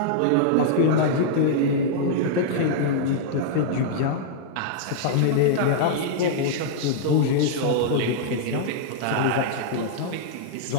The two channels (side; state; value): both; different; correlation -0.01